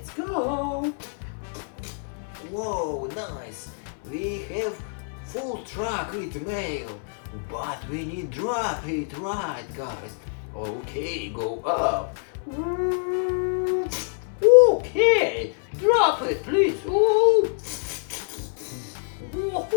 go. Whoa, nice. We have full truck with mail, but we need drop it, right, guys? Okay, go up. Okay, drop it, please. Ooh.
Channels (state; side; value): silent; right; 57 dB below the other